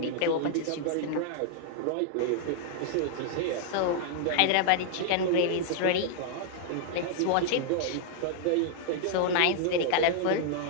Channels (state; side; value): different; both; correlation -0.01